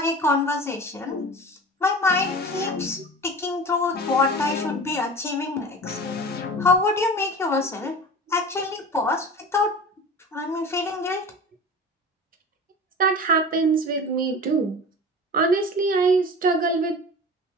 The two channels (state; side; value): normal; both; correlation 0.36